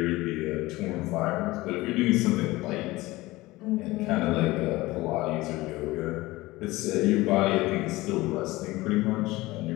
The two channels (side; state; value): right; quieter; 19.7 dB